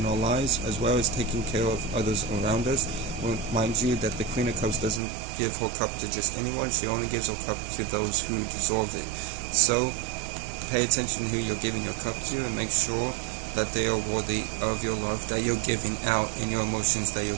our lives, as well as taking care of others around us. Well, mind you that the Queen of Cups doesn't give her cup to just anyone. She only gives her cup to those who deserve it. So pay attention to who you're giving your cup to, and make sure that they are worthy of your love that you're giving out, and your emotions that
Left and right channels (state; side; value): drops out; left; at 5.0 s